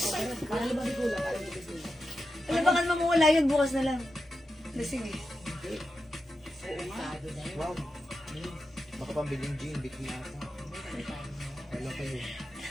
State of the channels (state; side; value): normal; both; correlation 0.89